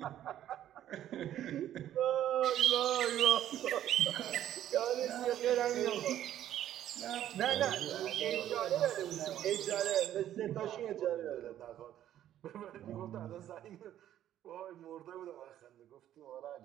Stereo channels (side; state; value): left; quieter; 11.7 dB